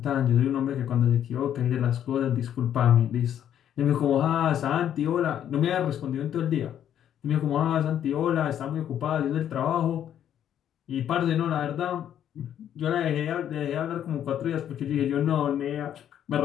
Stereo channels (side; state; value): right; quieter; 10.1 dB